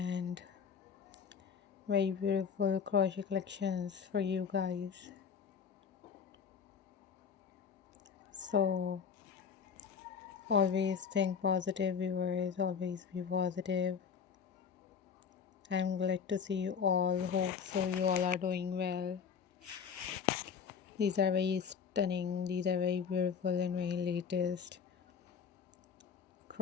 very beautiful crochet collections for you guys. So always think positive viewers, always be positive. I'm glad to see you all. Hope so you all are doing well. These are very stunning, these are very beautiful and very latest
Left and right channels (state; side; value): quieter; right; 6.7 dB